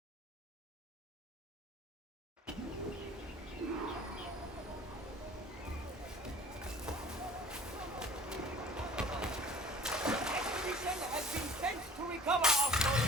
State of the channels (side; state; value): both; normal; correlation 0.47